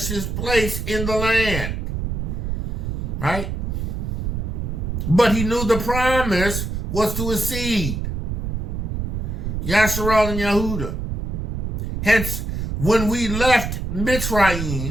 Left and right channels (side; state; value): right; noise; rumble, 3 dB below the sound